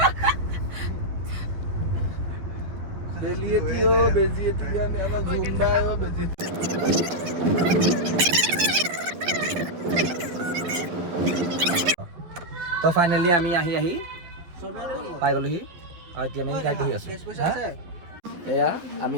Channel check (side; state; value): left; late; 12 ms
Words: তো ফাইনেলি আমি আহি পাই গ'লোহি আৰু এতিয়া আমি গাড়ীত বহি আছোঁ। এয়া আমি